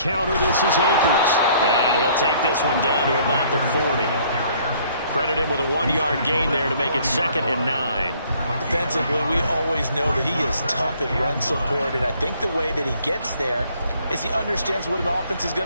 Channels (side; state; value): both; inverted; correlation -0.60